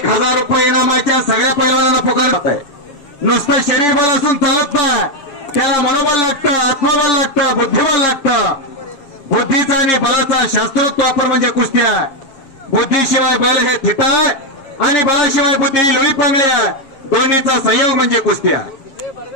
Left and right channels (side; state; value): right; late; 7.4 ms